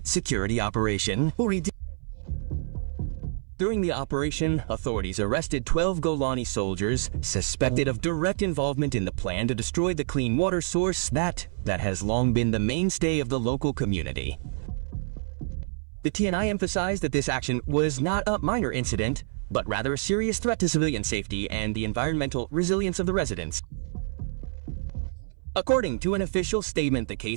security operation. During the operation, authorities arrested 12 Golani soldiers suspected of direct involvement in the plan to destroy the clean water source that has long been the mainstay of the local community. The TNI emphasized that this action was not a minor incident, but rather a serious threat to civilian safety and the environmental resilience of the residents. According to an official statement, the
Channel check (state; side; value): silent; left; 60 dB below the other